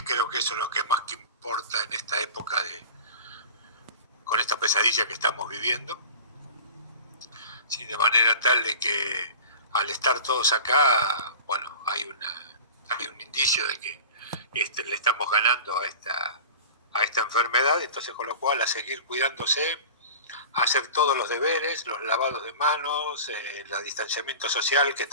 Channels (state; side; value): inverted; both; correlation -0.36